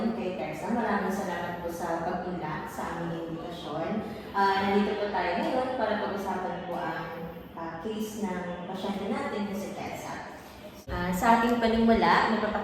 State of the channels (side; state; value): both; identical; correlation 1.00